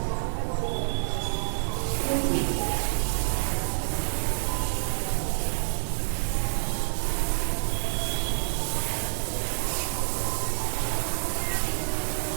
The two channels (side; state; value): left; silent; digital silence